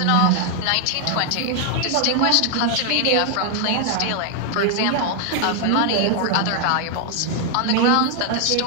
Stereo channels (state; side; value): different; both; correlation 0.00